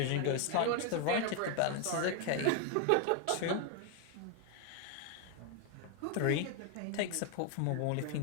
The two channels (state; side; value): different; both; correlation 0.01